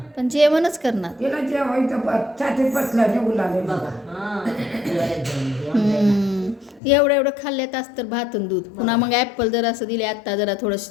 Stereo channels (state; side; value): drops out; right; at 6.8 s